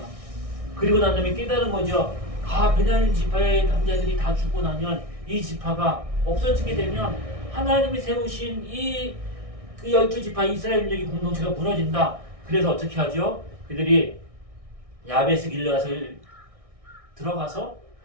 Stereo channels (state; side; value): late; left; 1.6 ms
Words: 그리고 난 다음에 깨달은 거죠. 베냐민 지파의 남자들이 다 죽고 나면 이 지파가 없어지게 되면 하나님이 세우신 그 12지파 이스라엘민족의 공동체가 무너진다. 그래서 어떻게 하죠? 그들이 야베스 길르앗을 들어가서